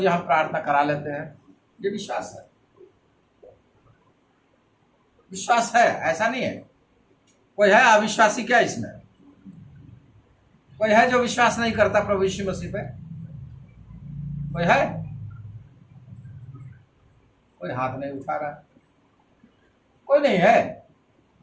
हम प्रार्थना करा लेते हैं। ये विश्वास है, विश्वास है, ऐसा नहीं है। कोई है अविश्वासी क्या इसमें? कोई है जो विश्वास नहीं करता प्रभु यीशु मसीह पे? कोई है? कोई हाथ नहीं उठा रहा, कोई नहीं है।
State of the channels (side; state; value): both; identical; correlation 1.00